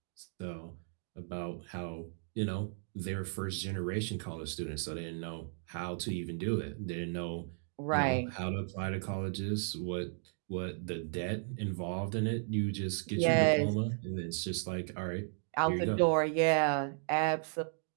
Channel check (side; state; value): left; silent; digital silence